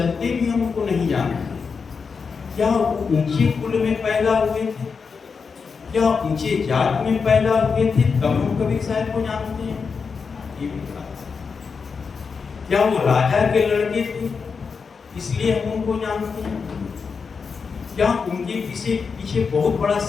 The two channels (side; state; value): right; quieter; 5.4 dB